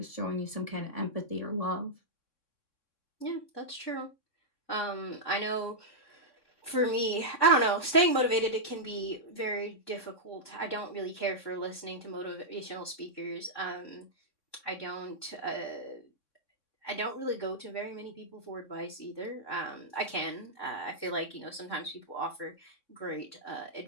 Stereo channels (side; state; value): right; late; 3.6 ms